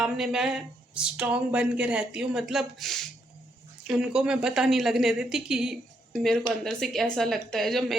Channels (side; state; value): both; normal; correlation 0.76